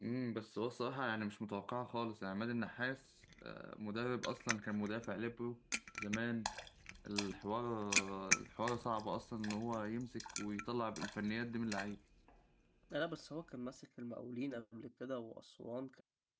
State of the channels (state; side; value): identical; both; correlation 1.00